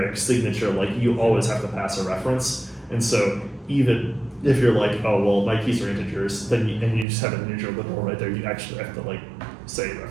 signature. Like you always have to pass a reference, and so even if you're like, oh well, my keys are integers, then and you just have an integer literal right there, you actually have to like say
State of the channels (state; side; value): drops out; left; at 7.1 s